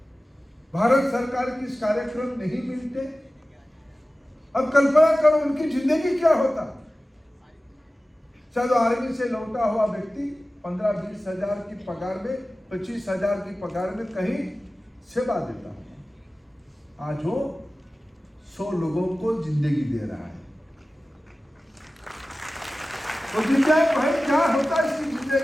भारत सरकार के इस कार्यक्रम नहीं मिलते, अब कल्पना करो उनकी जिंदगी क्या होता। शायद आर्मी से लौटा हुआ व्यक्ति 15-20 हजार की पगार में, 25 हजार की पगार में कहीं सेवा देता है, आज वो 100 लोगों को जिंदगी दे रहा है। तो जिंदगी भाई क्या होता है इसकी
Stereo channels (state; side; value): normal; both; correlation 0.96